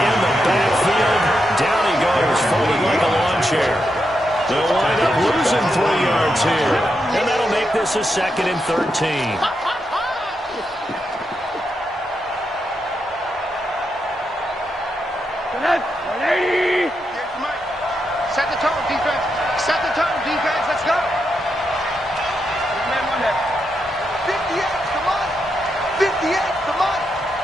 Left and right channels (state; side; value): normal; both; correlation 0.84